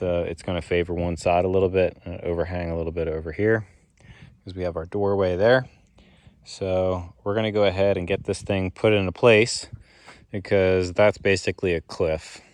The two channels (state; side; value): identical; both; correlation 1.00